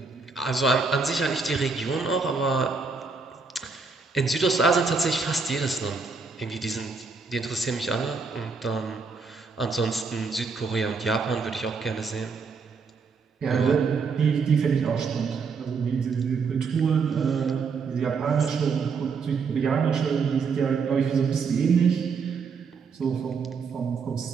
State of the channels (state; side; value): quieter; left; 4.9 dB